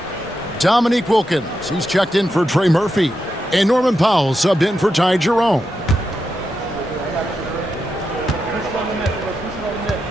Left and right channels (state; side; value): normal; both; correlation 0.86